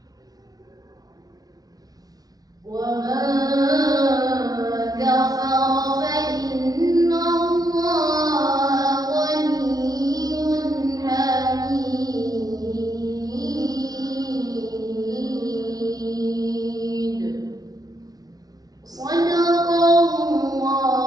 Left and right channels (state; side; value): late; left; 0.18 ms